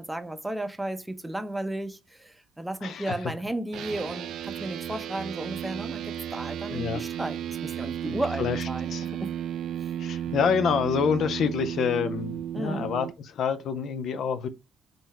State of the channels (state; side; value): normal; both; correlation 0.66